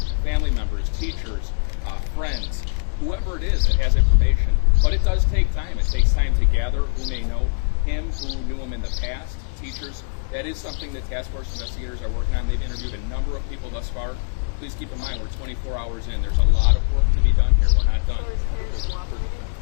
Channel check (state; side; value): silent; right; digital silence